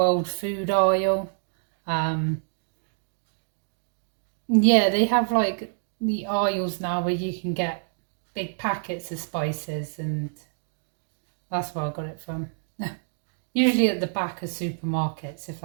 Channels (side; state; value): left; silent; digital silence